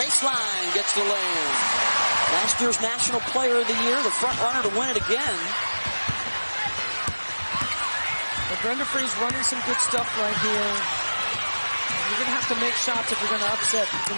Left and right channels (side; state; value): both; inverted; correlation -1.00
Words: gets the lay-in. Last year's National Player of the Year, the front runner to win it again. But Brenda Free's running some good stuff right here. You're going to have to make shots if you're going to upset the